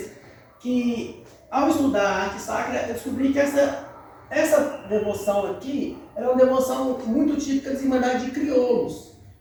que ao estudar a arte sacra, eu descobri que essa devoção aqui era uma devoção muito típica das Irmandades de Crioulos.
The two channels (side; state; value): both; identical; correlation 1.00